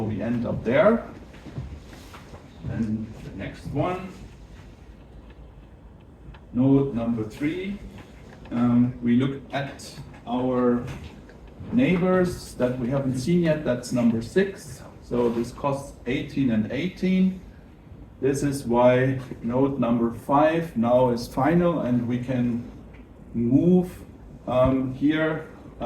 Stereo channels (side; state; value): both; identical; correlation 1.00